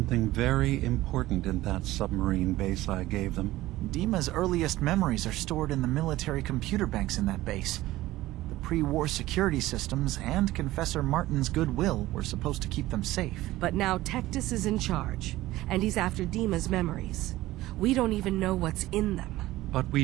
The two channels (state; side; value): quieter; left; 16.8 dB